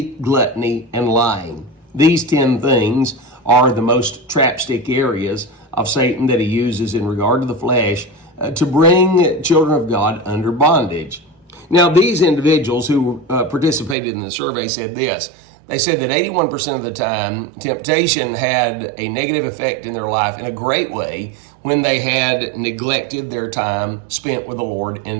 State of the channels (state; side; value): drops out; left; at 14.0 s